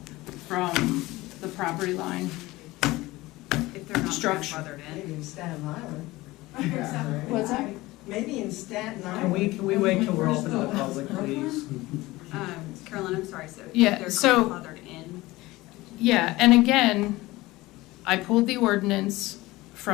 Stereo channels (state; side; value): quieter; right; 19.5 dB